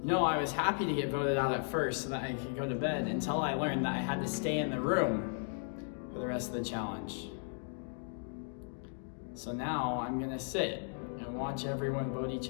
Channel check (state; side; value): silent; right; 54 dB below the other